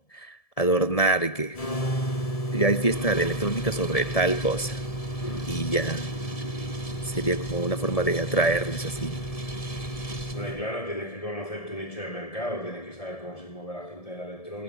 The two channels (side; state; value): right; late; 1.7 ms